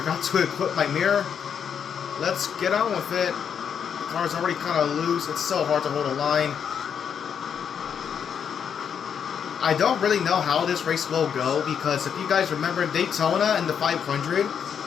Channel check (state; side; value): quieter; right; 7.6 dB